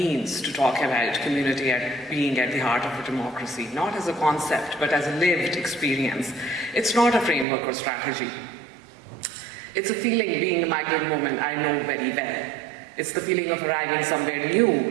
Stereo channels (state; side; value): drops out; left; at 7.5 s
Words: to talk about community being at the heart of a democracy, not as a concept, but as a lived experience, it's not a framework or strategy. It's a feeling, being a migrant woman, I know very well. It's the feeling of arriving somewhere new